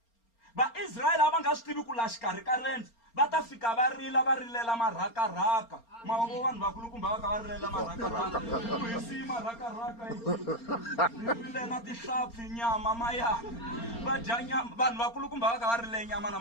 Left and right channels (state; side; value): late; right; 4.3 ms